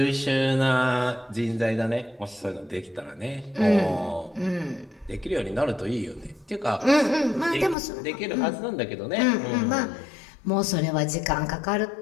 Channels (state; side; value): drops out; right; at 7.8 s